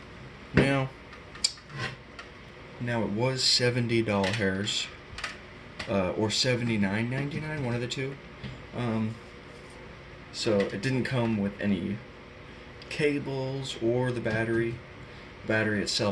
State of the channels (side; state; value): both; identical; correlation 1.00